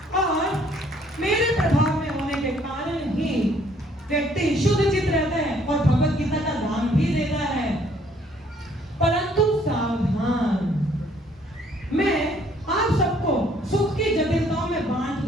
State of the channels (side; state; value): both; normal; correlation 0.63